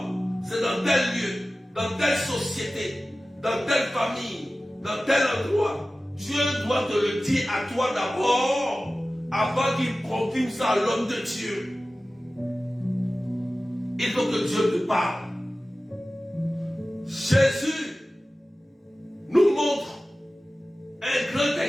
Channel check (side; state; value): both; normal; correlation 0.96